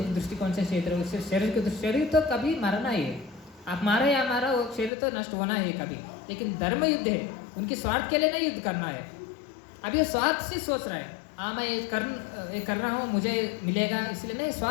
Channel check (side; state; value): right; drops out; at 4.9 s